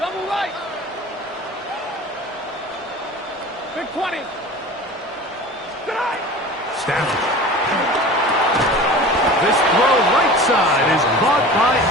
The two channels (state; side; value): normal; both; correlation 0.37